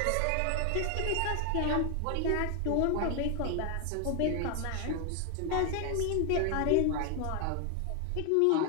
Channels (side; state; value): both; different; correlation 0.00